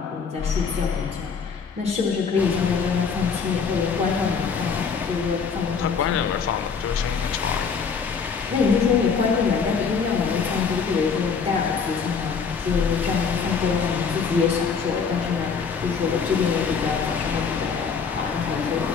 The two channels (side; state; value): right; quieter; 5.8 dB